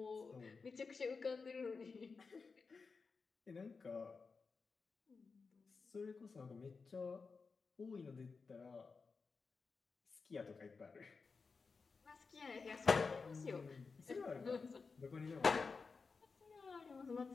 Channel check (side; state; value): right; quieter; 4.7 dB